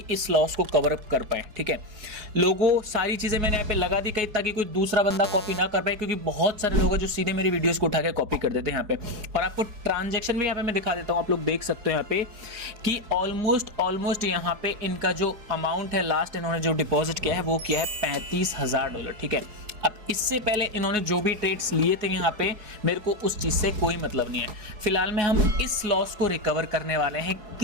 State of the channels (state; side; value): late; left; 4.7 ms